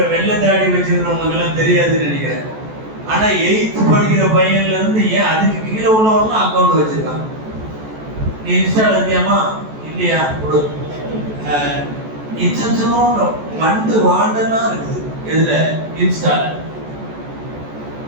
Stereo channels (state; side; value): late; left; 14 ms